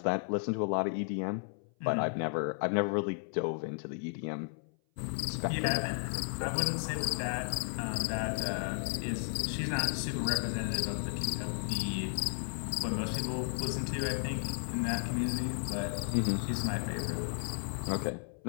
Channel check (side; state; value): right; silent; 55 dB below the other